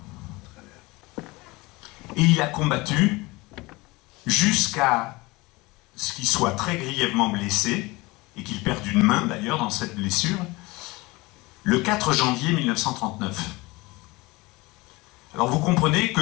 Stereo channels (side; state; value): right; quieter; 22.8 dB